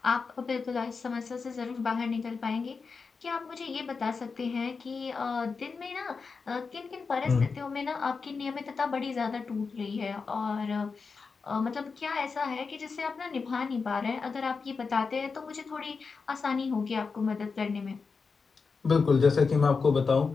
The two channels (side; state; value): right; quieter; 4.9 dB